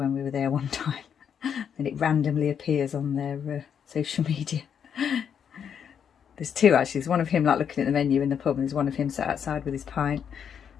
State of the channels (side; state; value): right; quieter; 7.9 dB